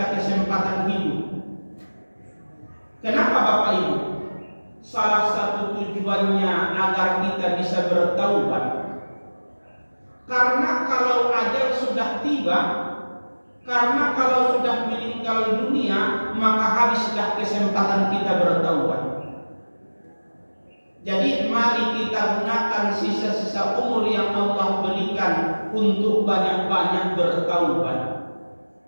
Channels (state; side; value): inverted; both; correlation -1.00